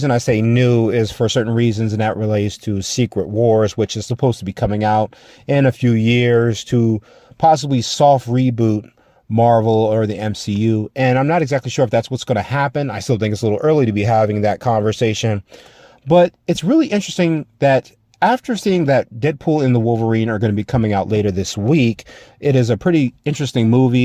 I say new is for certain reasons, and that relates to Secret Wars, which is supposed to be coming out in a few years to possibly soft reboot Marvel or the MCU. And I'm not exactly sure if that's what's going to happen. I still think it's a little early to be having that conversation. But it's really interesting that after seeing that Deadpool and the Wolverine are going to be coming out later this week, it is a pretty interesting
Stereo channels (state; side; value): identical; both; correlation 1.00